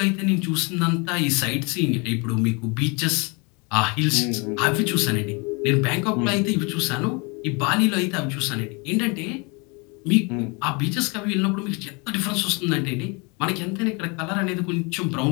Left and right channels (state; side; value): quieter; right; 30.3 dB